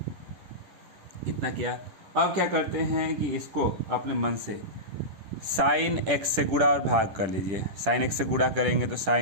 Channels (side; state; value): left; late; 10 ms